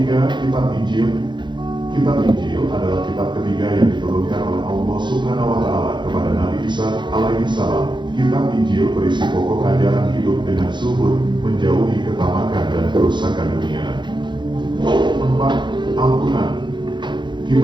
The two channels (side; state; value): left; late; 0.22 ms